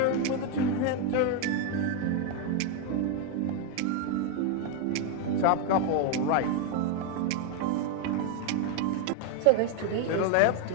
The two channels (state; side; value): different; both; correlation 0.01